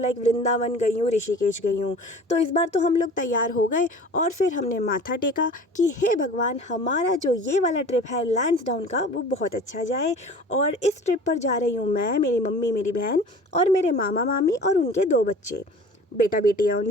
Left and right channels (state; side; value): normal; both; correlation 0.43